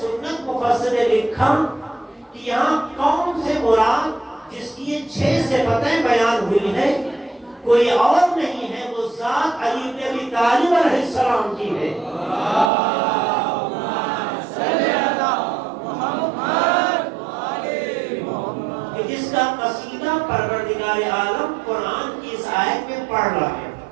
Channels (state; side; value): drops out; left; at 12.7 s